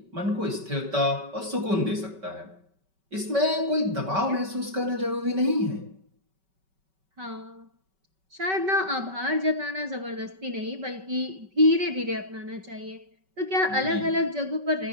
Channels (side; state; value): left; late; 5.3 ms